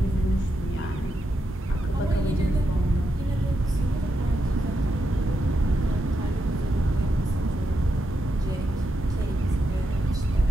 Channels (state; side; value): normal; both; correlation 0.84